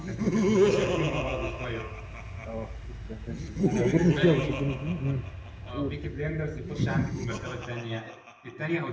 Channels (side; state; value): both; identical; correlation 1.00